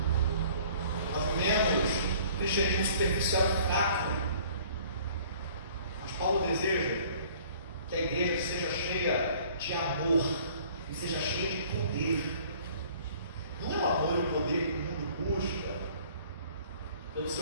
Nós vivemos cristianismo superficial e fraco. Mas Paulo deseja que a igreja seja cheia de amor, e seja cheia de poder. Não é o amor e o poder que o mundo busca pelo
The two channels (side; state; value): both; inverted; correlation -0.53